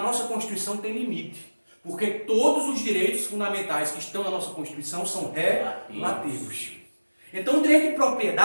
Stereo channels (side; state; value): both; inverted; correlation -1.00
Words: nossa Constituição tem limite. Porque todos os direitos fundamentais que estão na nossa Constituição são relativos. Então o direito de